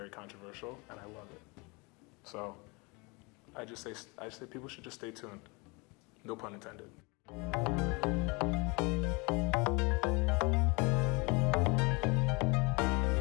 controversial, and I love it. So I just say people should just stay tuned. No pun intended.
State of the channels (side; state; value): right; quieter; 28.5 dB